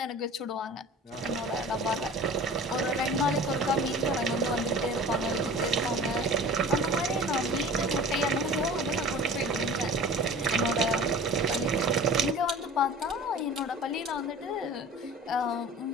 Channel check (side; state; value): both; normal; correlation 0.40